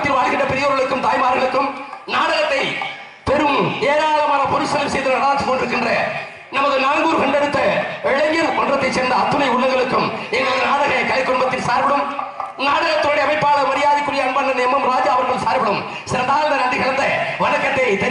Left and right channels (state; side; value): identical; both; correlation 1.00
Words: வாழ்கின்ற பெரியோர்களுக்கும் தாய்மார்களுக்கும் நாடகத்தை பெரும் ஏராளமான பொருட்செலவு செய்து நடாத்திக் கொண்டிருக்கின்ற நமது நாங்கூர் கண்டெடுத்த இளைஞர் மன்றத்தைச் சேர்ந்த அத்துணை உள்ளங்களுக்கும் எங்களது நாடக கலை குடும்பத்தின் சார்பிலும் நாடகத்துடைய அமைப்பாளர் மரியாதைக்குரிய அன்பண்ணன் எம் ராஜா அவர்கள் சார்பிலும் சிறந்தாழ்ந்த நன்றி கலந்த வணக்கத்தை